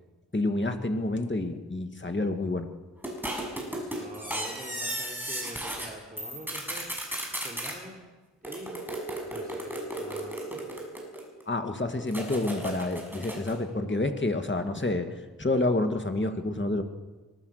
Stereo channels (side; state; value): both; normal; correlation 0.52